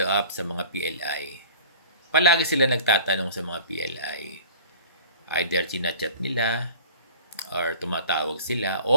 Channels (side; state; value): both; inverted; correlation -0.45